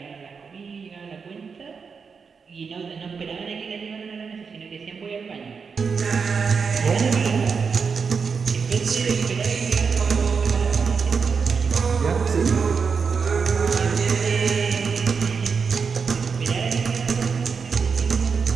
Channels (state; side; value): quieter; left; 5.6 dB